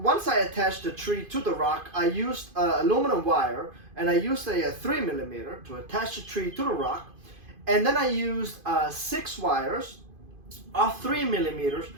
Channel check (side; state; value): left; late; 2.5 ms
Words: I attached the tree to the rock, I used aluminum wire, and I used a 3mm to attach the tree to the rock, and then I used 6 wires of 3mm